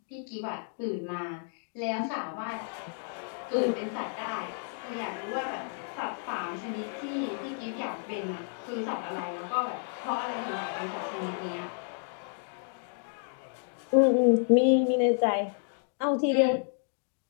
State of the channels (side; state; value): right; silent; 57 dB below the other